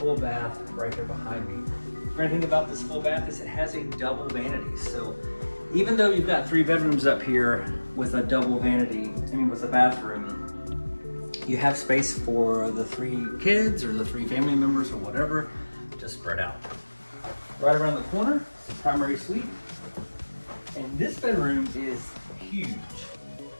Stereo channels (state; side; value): inverted; both; correlation -1.00